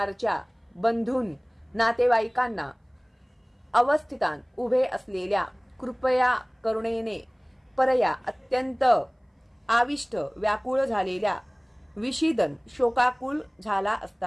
बंधून नातेवाईकांना अवस्थितान उभे असलेल्या कृपया करुणेने परया अत्यंत आविष्ट व्याकुळ झालेल्या विषीदन शोकाकुल झाला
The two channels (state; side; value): identical; both; correlation 1.00